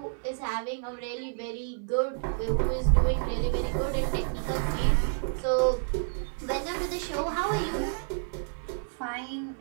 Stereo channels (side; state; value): left; silent; digital silence